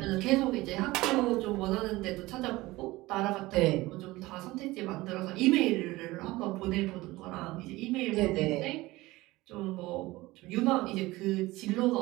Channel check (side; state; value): left; quieter; 19.5 dB